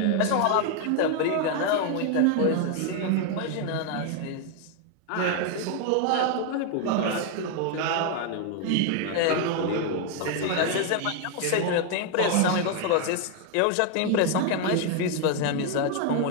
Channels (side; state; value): both; different; correlation 0.01